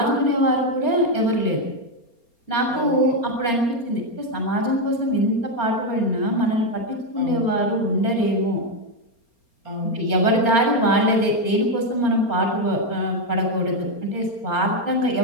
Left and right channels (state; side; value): late; right; 4.3 ms